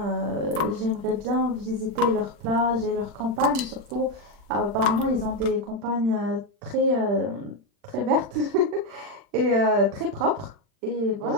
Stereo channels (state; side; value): late; left; 40 ms